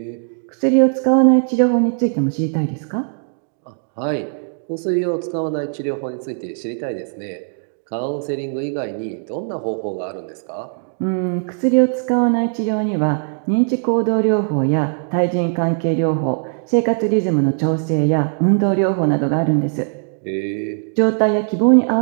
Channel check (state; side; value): silent; left; digital silence